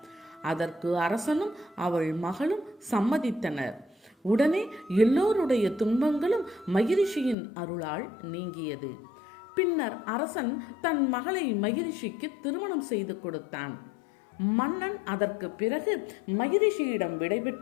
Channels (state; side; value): drops out; right; at 7.4 s